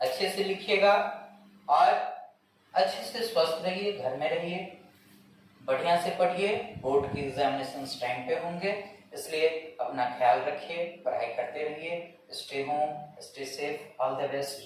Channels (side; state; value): both; identical; correlation 1.00